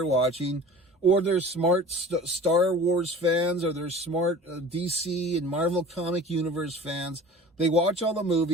watching, or they're smart Star Wars fans, or they're smart DC and Marvel Comic Universe fans. They watch all the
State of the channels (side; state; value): both; normal; correlation 0.41